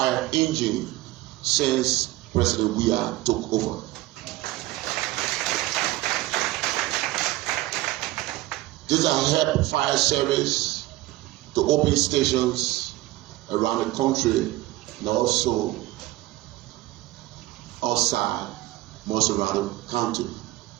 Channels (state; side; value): quieter; left; 17.4 dB